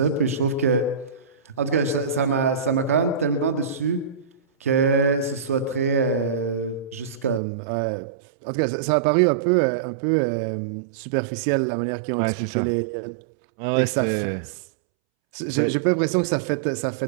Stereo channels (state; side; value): drops out; left; at 7.4 s